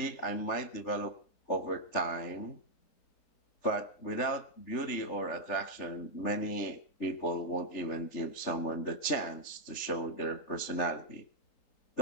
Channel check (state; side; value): late; right; 3.4 ms